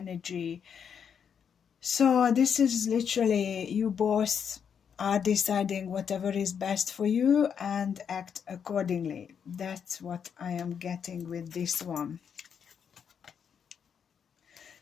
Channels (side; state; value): right; quieter; 7.4 dB